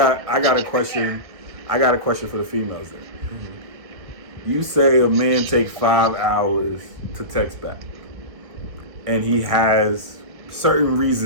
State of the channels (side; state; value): left; late; 1.9 ms